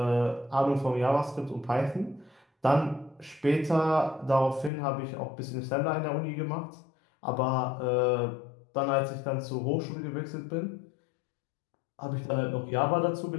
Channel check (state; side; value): drops out; right; at 4.7 s